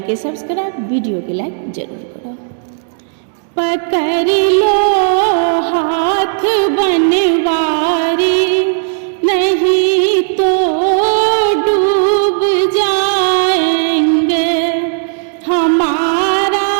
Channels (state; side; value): silent; left; digital silence